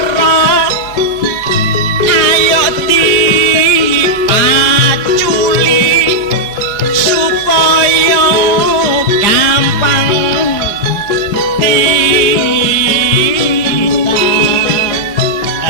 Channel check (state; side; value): late; right; 4.8 ms